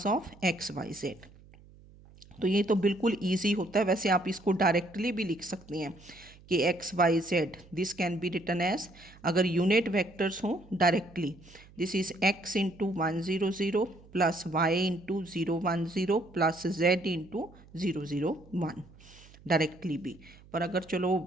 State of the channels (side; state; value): right; noise; hum, 23 dB below the sound